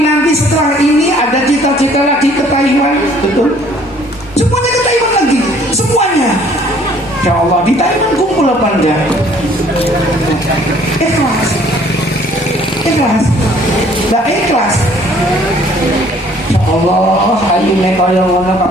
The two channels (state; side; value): normal; both; correlation 0.58